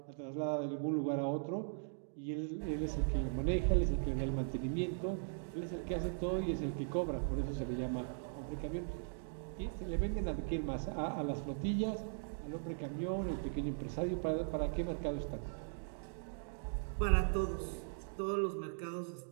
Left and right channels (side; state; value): left; silent; digital silence